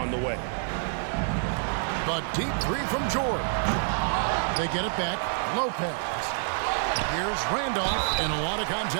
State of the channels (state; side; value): silent; left; 60 dB below the other